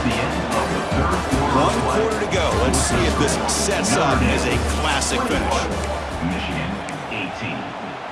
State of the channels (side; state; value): both; identical; correlation 1.00